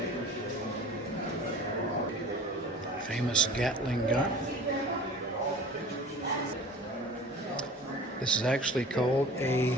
Famous Gatling gun. This is actually called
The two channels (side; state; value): both; normal; correlation 0.41